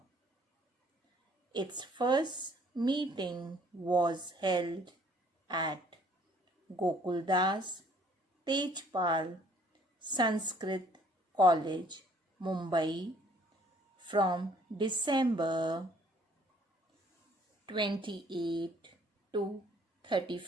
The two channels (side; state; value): both; normal; correlation 0.60